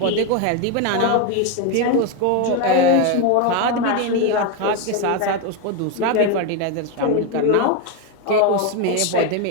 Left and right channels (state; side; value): different; both; correlation 0.02